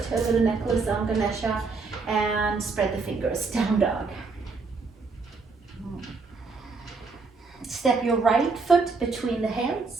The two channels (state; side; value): quieter; left; 4.3 dB